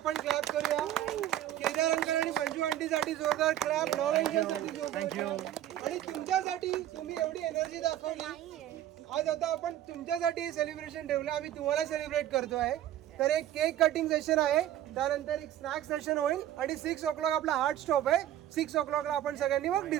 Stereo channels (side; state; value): left; quieter; 12.2 dB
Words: क्लॅप करूया. केदार अंकल आणि मंजू आंटीसाठी जोरदार क्लॅप, नव एंजलसाठी जोरदार clap. आणि तुमच्यासाठी तुम्ही एवढी एनर्जी दाखवली. आज आता आपण तुमच्यासाठी हे सेलिब्रेशन ठेवलं, आम्ही तुम्हाला सेलिब्रेट करतो आहे. तर एक केक कटिंग सेशन आहे, त्यानंतर एक स्नॅक सेशन होईल आणि 6 o'clock आपला हार्ड स्टॉप आहे. 6 o'clockला आपण सगळ्यांनी मग